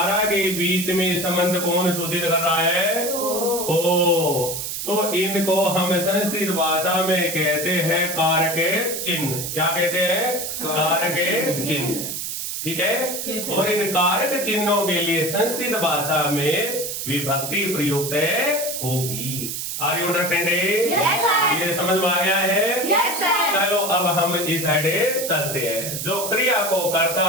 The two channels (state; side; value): noise; right; hiss, 4 dB below the sound